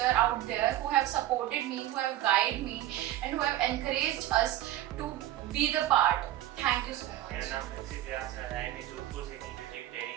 out there who have supported me, who have guided me and who have encouraged us to be the part. Thank you so much. मेरा नाम Prinsep व्यास है, IIM Jodhpur से की music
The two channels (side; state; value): left; quieter; 13.9 dB